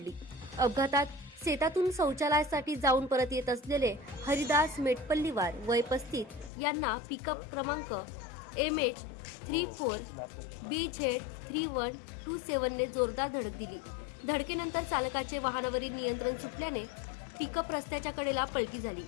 अपघातात शेतातून शौचालयासाठी जाऊन परत येत असलेले हरिदास मेटपल्लीवार वय 35 यांना पिकअप क्रमांक MH34BZ3127 ने जोरदार धडक दिली. धडकेनंतर चालकाचे वाहनावरील नियंत्रण सुटल्याने पिकअप रस्त्याच्या कडेला पलटी झाली.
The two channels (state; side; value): drops out; right; at 6.5 s